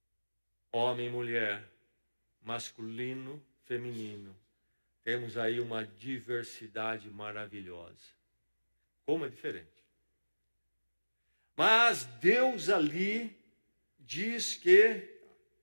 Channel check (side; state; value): both; inverted; correlation -1.00